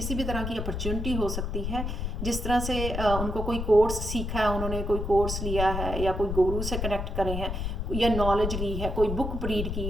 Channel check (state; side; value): noise; left; rumble, 3 dB below the sound